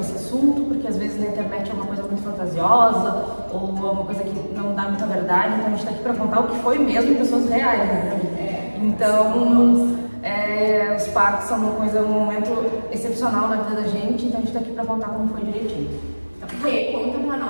assunto, porque às vezes na internet é uma coisa muito fantasiosa ou uma coisa que não dá muita verdade, então a gente está aqui para contar o que foi mesmo de pessoas reais, né? Então, os partos são um momento excepcional na vida da gente, então a gente está aqui para contar como foi direitinho. Rê, conta pra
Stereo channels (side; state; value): both; inverted; correlation -1.00